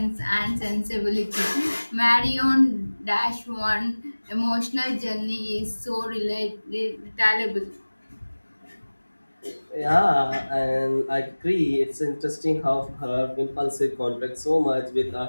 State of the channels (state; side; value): inverted; both; correlation -1.00